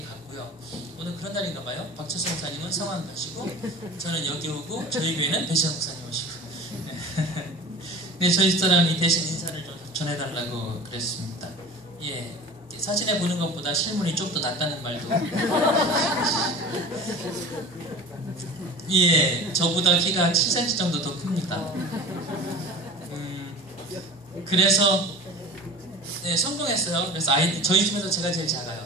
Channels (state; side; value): normal; both; correlation 0.36